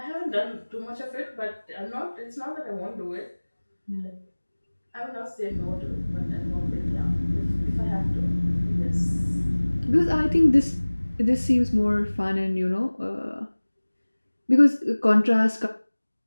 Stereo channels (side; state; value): both; inverted; correlation -1.00